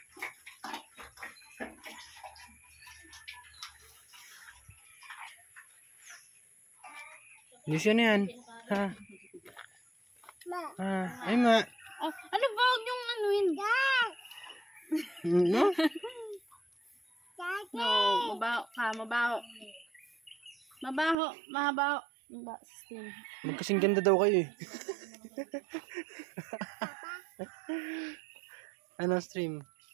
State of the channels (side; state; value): left; drops out; at 21.2 s